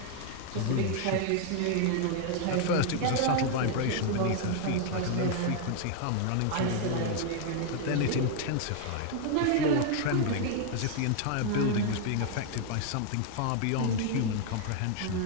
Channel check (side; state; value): both; different; correlation 0.00